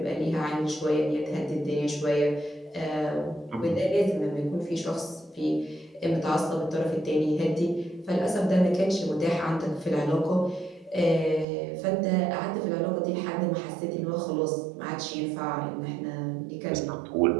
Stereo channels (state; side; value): drops out; left; at 11.5 s